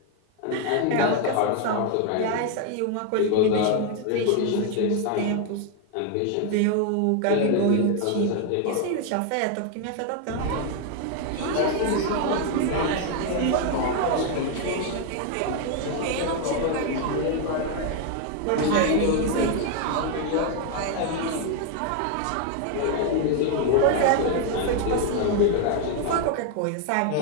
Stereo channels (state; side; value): different; both; correlation 0.00